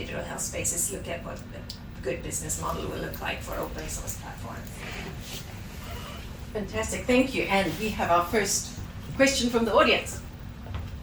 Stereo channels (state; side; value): identical; both; correlation 1.00